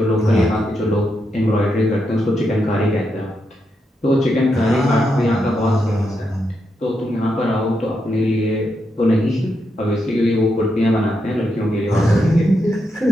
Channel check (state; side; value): normal; both; correlation 0.83